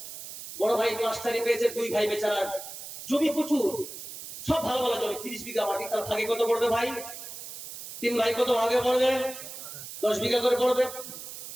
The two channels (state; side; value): noise; right; hiss, 11 dB below the sound